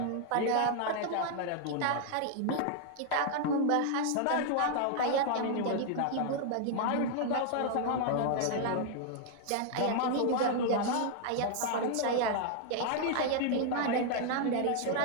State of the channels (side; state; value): both; different; correlation 0.00